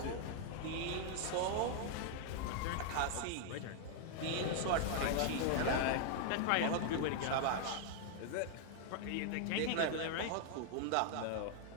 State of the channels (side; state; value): both; different; correlation 0.00